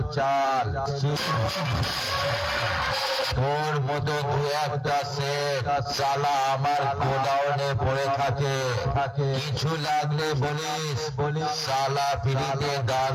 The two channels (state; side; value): identical; both; correlation 1.00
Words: তোর মতো দু একটা সেট শালা আমার গোডাউনে পড়ে থাকে। কিছু লাগলে বলিস শালা ফ্রিতে দান